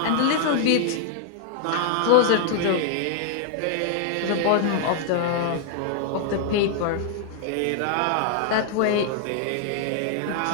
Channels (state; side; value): different; both; correlation 0.00